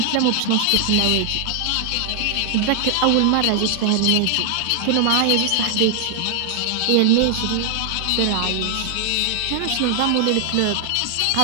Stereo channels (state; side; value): different; both; correlation 0.00